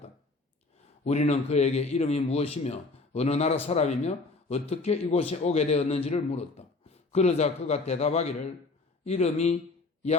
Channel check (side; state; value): right; quieter; 3.5 dB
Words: 우리는 그에게 이름이 무엇이며 어느 나라 사람이며 어떻게 이곳에 오게 되었는지를 물었다. 그러자 그가 대답하기를 이름이